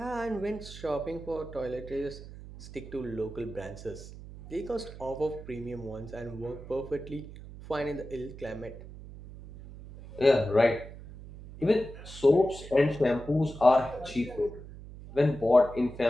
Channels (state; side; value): noise; right; hum, 14 dB below the sound